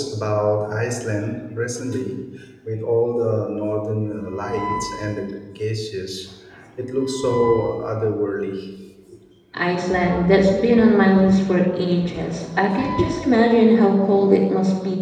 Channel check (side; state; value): both; identical; correlation 1.00